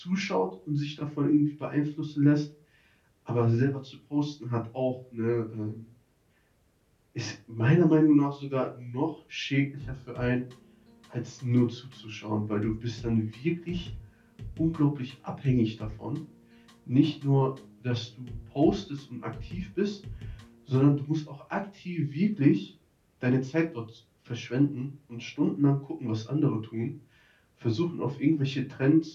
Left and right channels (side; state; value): both; identical; correlation 1.00